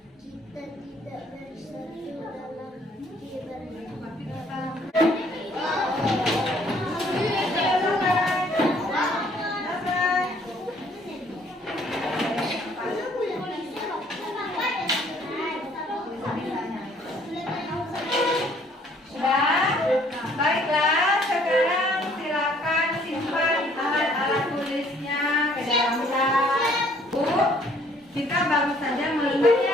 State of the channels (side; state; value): both; normal; correlation 0.61